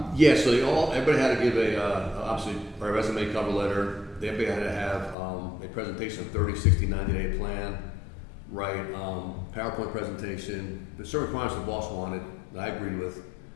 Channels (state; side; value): drops out; right; at 5.2 s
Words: Yeah, so everybody had to give obviously our resume, cover letter. Everybody had to have a presentation, 30, 60, 90-day plan, right? PowerPoint presentation. The certain requirements the boss wanted, that I agreed with,